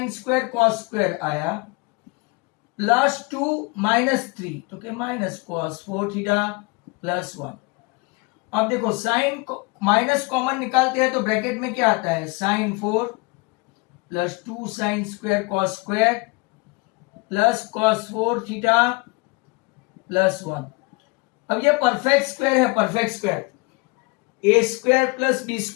स्क्वायर कॉस स्क्वायर आया प्लस 2 -3, तो क्या माइनस कॉस 4 थीटा प्लस 1। अब देखो साइन माइनस कॉमन निकालते हैं तो ब्रैकेट में क्या आता है, sine 4 plus 2 sine square cos square plus cos 4 theta plus 1। अब ये परफेक्ट स्क्वायर है, perfect square A square plus B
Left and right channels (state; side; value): quieter; right; 27.2 dB